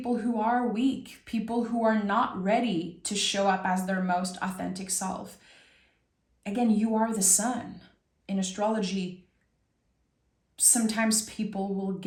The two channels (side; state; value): both; identical; correlation 1.00